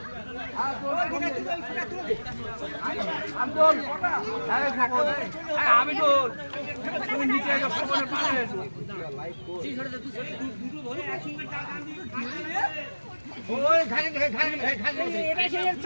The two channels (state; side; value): inverted; both; correlation -1.00